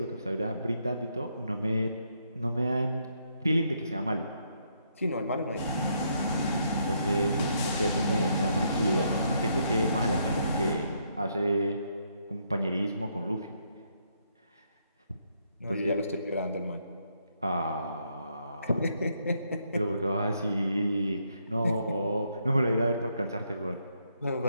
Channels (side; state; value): both; inverted; correlation -0.75